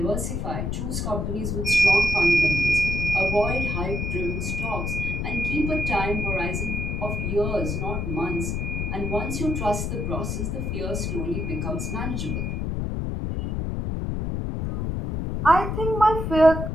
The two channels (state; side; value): noise; left; rumble, 1 dB below the sound